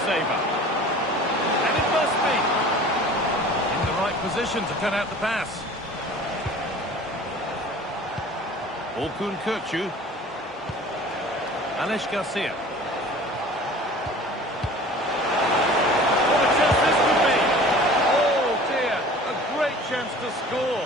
savour. And it must be. In the right position to cut out the pass. Orkun Kökçü. Alex Garcia. What a chance this could be. Oh dear, a great chance to score.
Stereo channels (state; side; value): normal; both; correlation 0.44